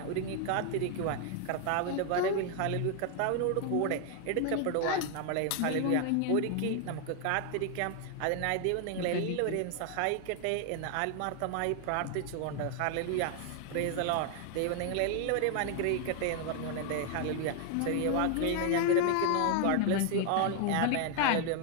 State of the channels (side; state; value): both; different; correlation 0.00